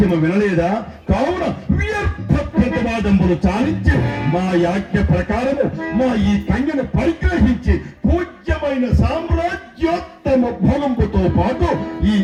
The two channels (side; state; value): both; identical; correlation 1.00